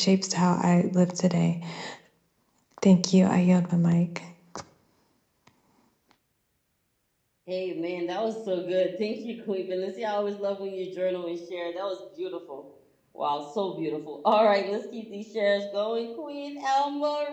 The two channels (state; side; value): identical; both; correlation 1.00